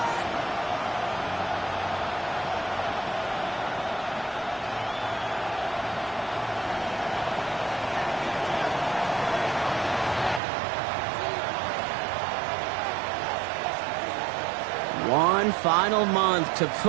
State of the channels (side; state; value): left; drops out; at 10.4 s